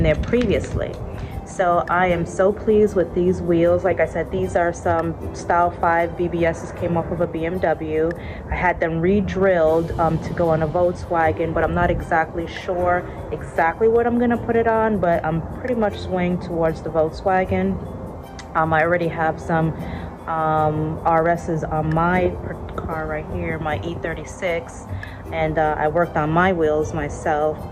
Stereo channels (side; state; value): both; identical; correlation 1.00